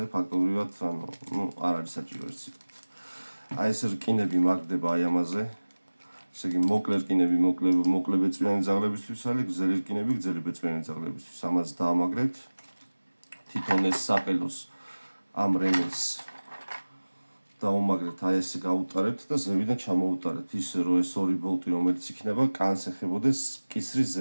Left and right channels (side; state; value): both; inverted; correlation -1.00